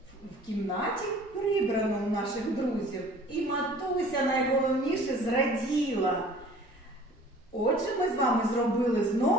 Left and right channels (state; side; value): normal; both; correlation 0.49